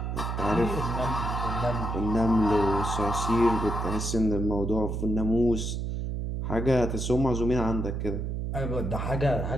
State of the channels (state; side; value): noise; right; hum, 2 dB below the sound